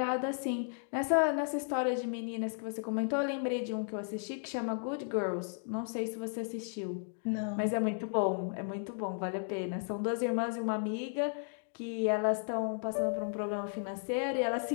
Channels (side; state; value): right; silent; digital silence